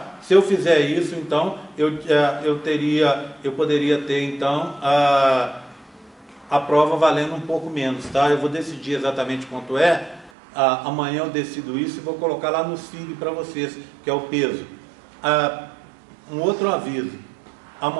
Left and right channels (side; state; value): left; drops out; at 10.3 s